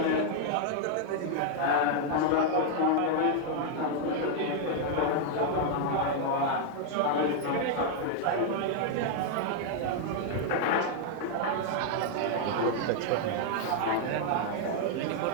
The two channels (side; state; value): both; different; correlation 0.00